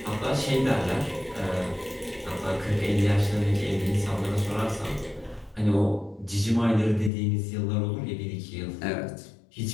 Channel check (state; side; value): drops out; right; at 7.1 s